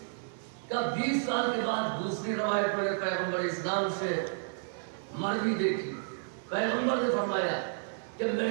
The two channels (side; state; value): left; silent; digital silence